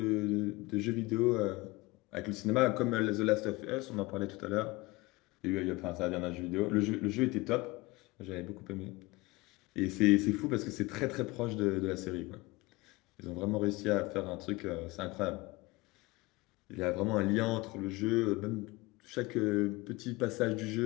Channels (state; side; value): quieter; right; 22.5 dB